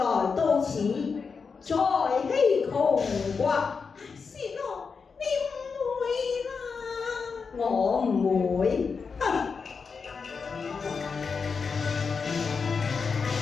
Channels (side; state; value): right; quieter; 5.3 dB